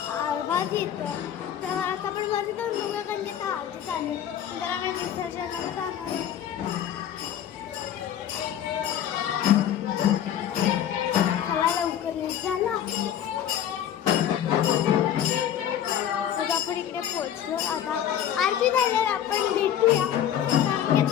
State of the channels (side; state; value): right; quieter; 10.2 dB